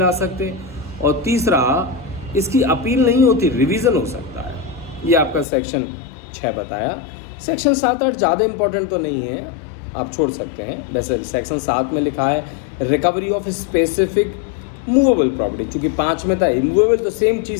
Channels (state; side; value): drops out; right; at 5.5 s